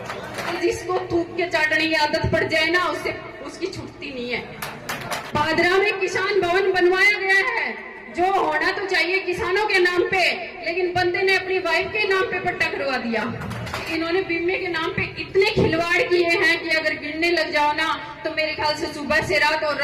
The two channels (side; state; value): both; identical; correlation 1.00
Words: जिसको थूक के चाटने की आदत पड़ जाए ना, उससे उसकी छूटती नहीं है। पादरा में किसान भवन बनवाया गया है, जो होना तो चाहिए किसानों के नाम पे, लेकिन बंदे ने अपनी वाइफ के नाम पे पट्टा करवा दिया। इन्होंने बीमे के नाम पे इतने खिलवाड़ किए हैं कि अगर गिनने लग जाओ ना तो मेरे ख्याल से सुबह से रात और